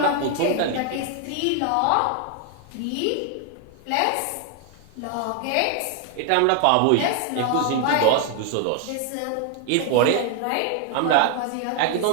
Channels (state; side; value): different; both; correlation 0.00